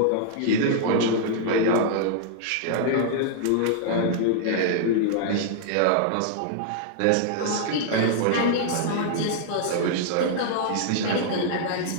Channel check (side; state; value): both; different; correlation -0.01